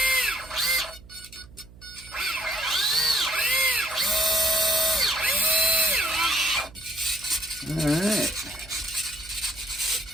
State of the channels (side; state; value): right; noise; hum, 21 dB below the sound